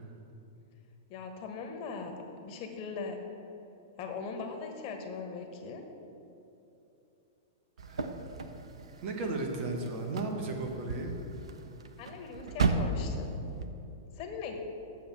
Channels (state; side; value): inverted; both; correlation -0.32